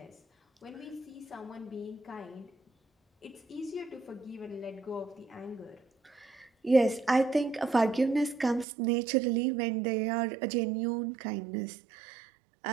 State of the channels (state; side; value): drops out; left; at 8.7 s